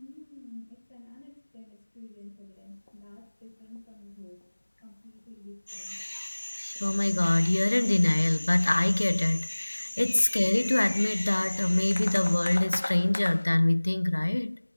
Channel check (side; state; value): both; inverted; correlation -1.00